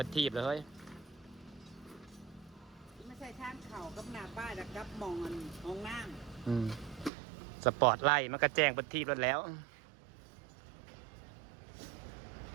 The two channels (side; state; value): left; drops out; at 7.1 s